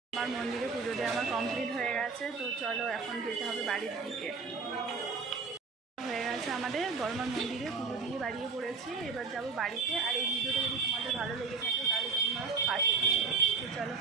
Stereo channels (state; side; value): quieter; left; 4.8 dB